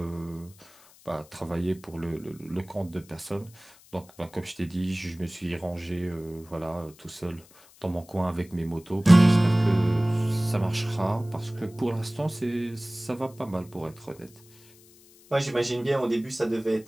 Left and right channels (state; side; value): noise; left; hiss, 25 dB below the sound